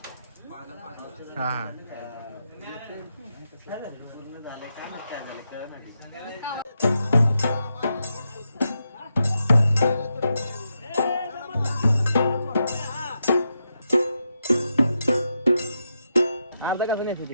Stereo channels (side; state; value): both; inverted; correlation -0.85